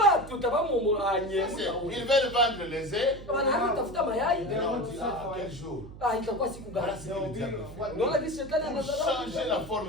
tutabamu anye. Ils veulent vendre les œufs. Wanatafuta mayai. Et on dit, ah, quel jour? Itakuwa siku gani? Voilà ce que le diable fait. Unaona jinsi shetani Pour anadharau. changer la forme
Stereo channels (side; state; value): right; noise; hum, 15 dB below the sound